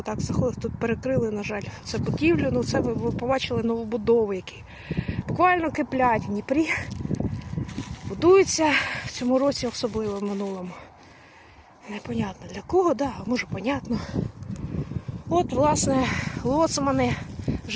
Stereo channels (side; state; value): both; identical; correlation 1.00